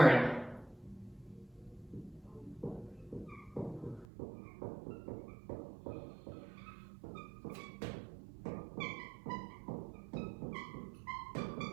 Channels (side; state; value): left; drops out; at 4.0 s